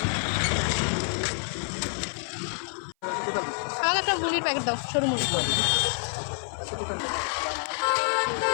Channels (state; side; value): silent; right; 56 dB below the other